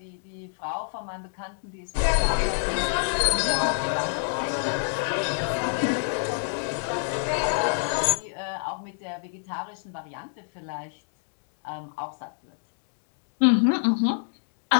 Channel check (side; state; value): right; silent; digital silence